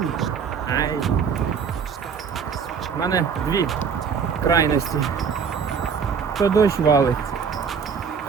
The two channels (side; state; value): left; quieter; 6.4 dB